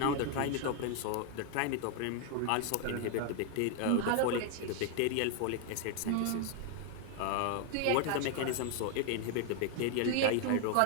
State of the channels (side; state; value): both; different; correlation 0.00